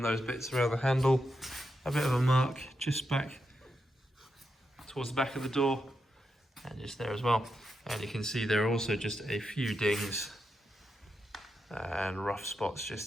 those bits around the handle, a bit of a mark just back towards the back of the door, and just there as well. And you can see there are also just a few dings and rough spots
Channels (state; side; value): normal; both; correlation 0.85